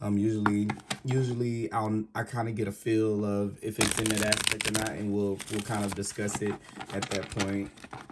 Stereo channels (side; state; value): both; identical; correlation 1.00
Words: I kind of get a feel of if it's in that aspect or not, and we'll kind of discuss it at that point.